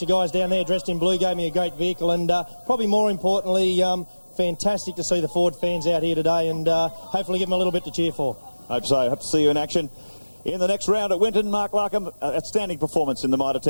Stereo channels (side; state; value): both; inverted; correlation -1.00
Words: guys down there dressed in blue, gave me a great vehicle, and probably more importantly, fantastic to see the Ford fans out here today, and hopefully give them a little bit to cheer for. Hope so. Hope to see you in action. In the next round at Winton, Mark Larkham, outstanding performance in the Mitre